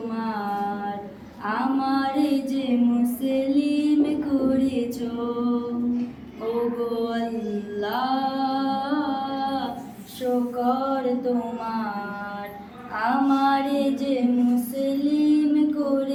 আমারে যে মুসলিম করেছো। ওগো আল্লাহ শুকর তোমার আমারে যে মুসলিম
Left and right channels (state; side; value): identical; both; correlation 1.00